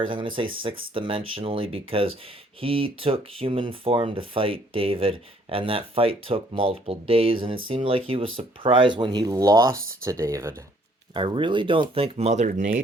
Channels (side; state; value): both; normal; correlation 0.63